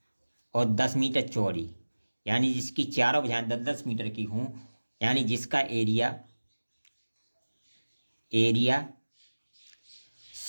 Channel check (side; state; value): both; inverted; correlation -1.00